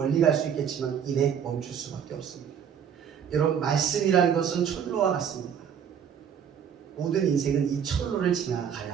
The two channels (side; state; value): left; quieter; 8.1 dB